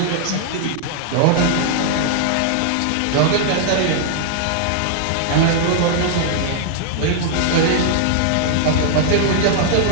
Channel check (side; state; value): both; different; correlation -0.01